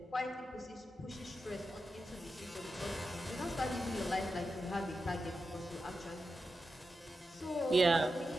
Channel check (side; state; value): both; normal; correlation 0.90